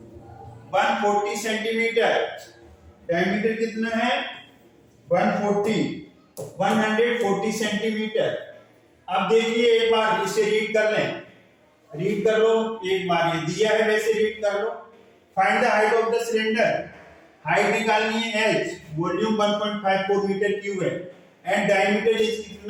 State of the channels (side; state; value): both; identical; correlation 1.00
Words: 140 सेंटीमीटर, डायमीटर कितना है 140 सेंटीमीटर। अब देखिए एक बार इसे रीड कर लो एक बार, ये दिया है वैसे रीड कर लो। Find the height of the cylinder. Height निकालनी है h, वॉल्यूम 1.54 मीटर क्यूब है, एंड डायमीटर इज